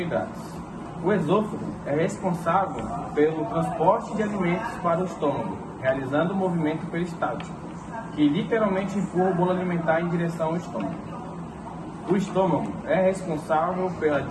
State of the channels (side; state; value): both; identical; correlation 1.00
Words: O esôfago é responsável pelo transporte de alimentos para o estômago, realizando o movimento peristáltico, que literalmente empurra o bolo alimentar em direção ao estômago. O estômago é responsável pela